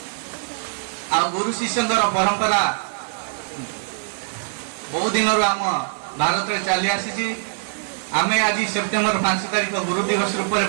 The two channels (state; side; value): silent; left; digital silence